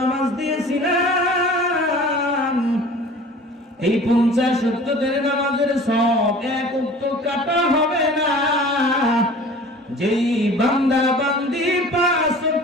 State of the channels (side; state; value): both; normal; correlation 0.44